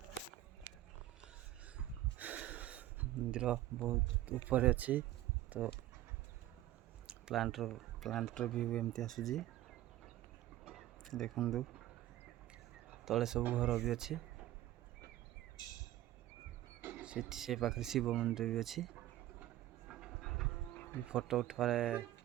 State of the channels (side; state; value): left; quieter; 14.4 dB